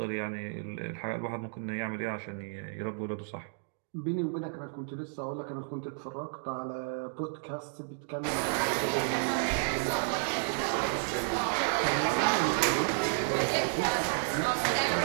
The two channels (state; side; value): silent; left; 57 dB below the other